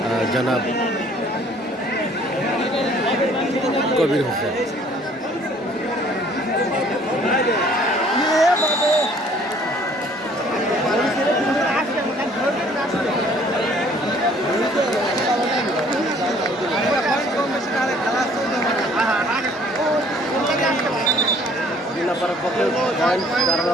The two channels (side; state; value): both; normal; correlation 0.57